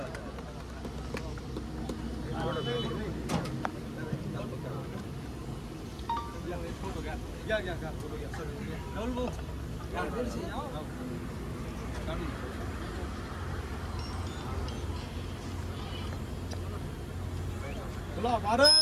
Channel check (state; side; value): identical; both; correlation 1.00